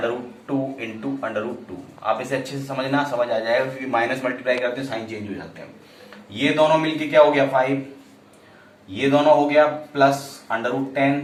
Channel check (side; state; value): both; identical; correlation 1.00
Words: into √2। आप इसे अच्छे से समझना, समझ आ जाएगा, क्योंकि माइनस मल्टीप्लाई करते हैं साइन चेंज हो जाते हैं। ये दोनों मिलके क्या हो गया 5, ये दोनों हो गया प्लस √10